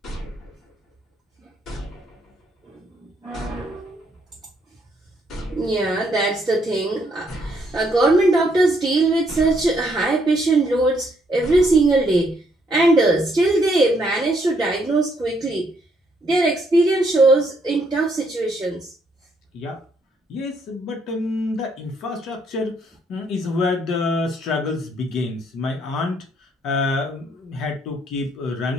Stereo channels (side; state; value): both; normal; correlation 0.71